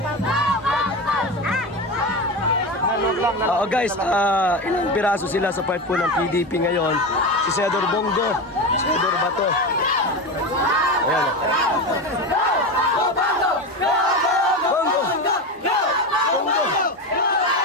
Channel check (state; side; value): normal; both; correlation 0.21